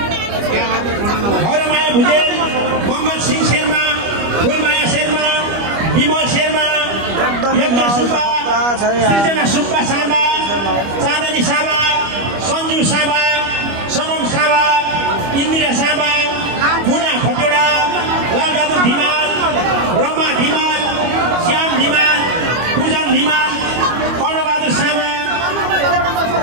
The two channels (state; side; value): late; left; 25 ms